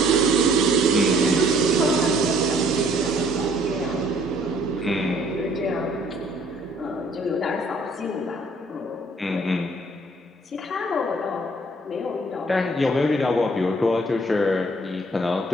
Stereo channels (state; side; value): normal; both; correlation 0.60